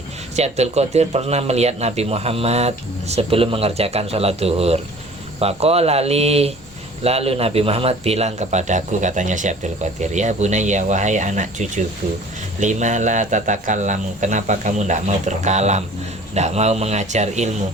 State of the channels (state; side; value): normal; both; correlation 0.48